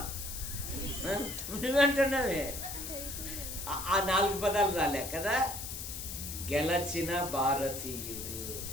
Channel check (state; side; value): noise; left; hiss, 7 dB below the sound